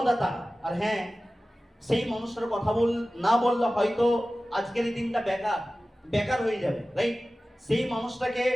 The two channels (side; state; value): both; normal; correlation 0.96